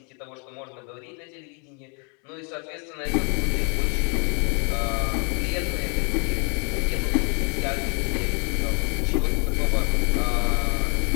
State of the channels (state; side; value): quieter; right; 36.6 dB